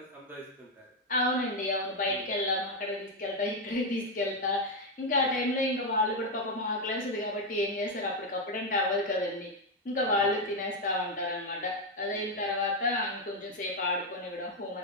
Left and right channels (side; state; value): both; normal; correlation 0.04